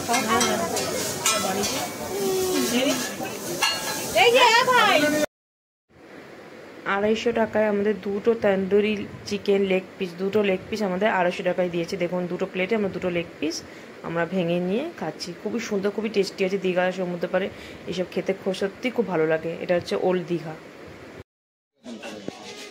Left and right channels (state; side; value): identical; both; correlation 1.00